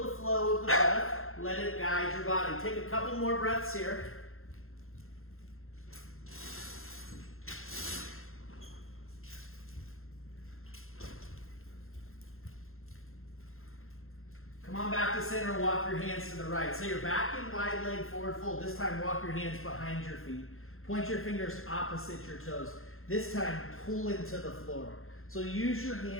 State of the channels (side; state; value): right; late; 0.61 ms